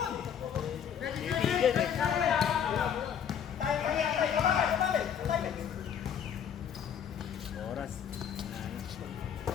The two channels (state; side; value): quieter; right; 8.4 dB